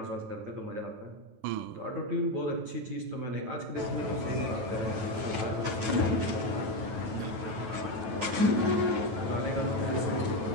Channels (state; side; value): late; left; 9.2 ms